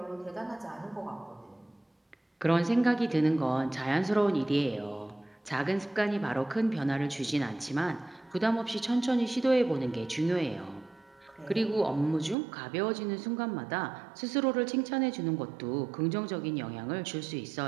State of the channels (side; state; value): left; drops out; at 12.4 s